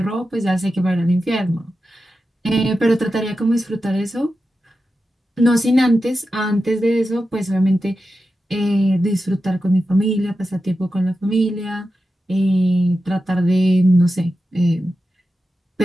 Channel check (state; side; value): normal; both; correlation 0.91